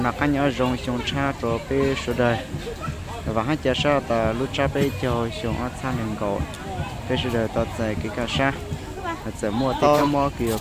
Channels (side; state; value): both; identical; correlation 1.00